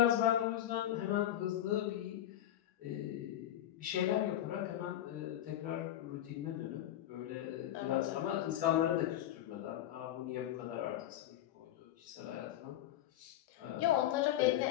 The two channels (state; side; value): quieter; right; 12.3 dB